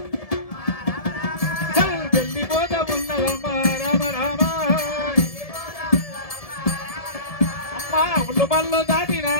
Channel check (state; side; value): late; right; 1.7 ms